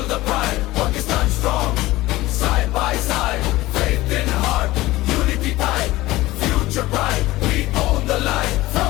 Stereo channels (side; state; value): right; quieter; 18.1 dB